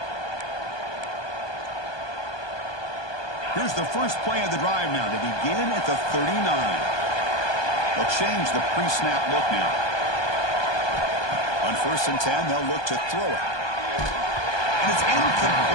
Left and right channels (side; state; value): right; late; 1.2 ms